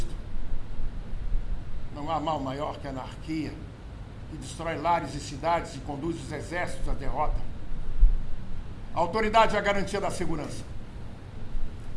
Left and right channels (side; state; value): both; identical; correlation 1.00